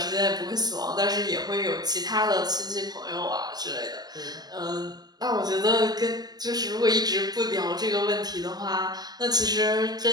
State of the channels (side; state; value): left; late; 0.19 ms